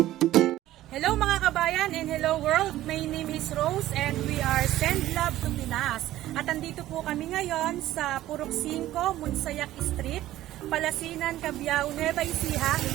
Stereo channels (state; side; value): quieter; left; 14.5 dB